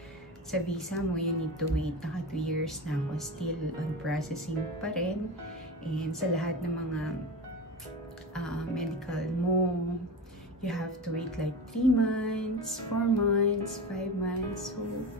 sa visa mo, you need to wait, naka 2 years na ako, still on processing pa rin, and sa lahat ng mga medical mo, you have to wait like 3 months, 4 months, 5 months. So,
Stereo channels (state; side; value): normal; both; correlation 0.26